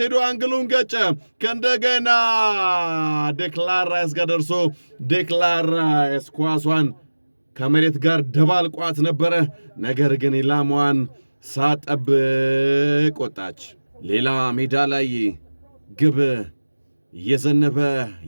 ሄዶ አንግሉን ገጨ። ከእንደገና ዴክላን ራይስ ጋር ደርሶ ዴክላን ራይስ ኳሷን ከመሬት ጋር ደባልቋት ነበረ። ነገር ግን ኢላማዋን ሳጠብቅ ወጣች። ሌላ ሜዳ ላይ ግብ እየዘነበ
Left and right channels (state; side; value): inverted; both; correlation -1.00